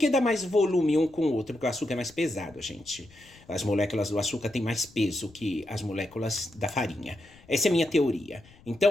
dá mais volume um com o outro? Porque o açúcar é mais pesado, gente. As moléculas do açúcar têm mais peso que as moléculas da farinha. Essa é a minha teoria.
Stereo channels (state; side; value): noise; left; rumble, 26 dB below the sound